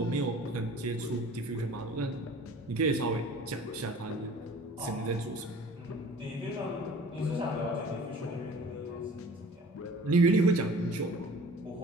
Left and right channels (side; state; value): both; normal; correlation 0.46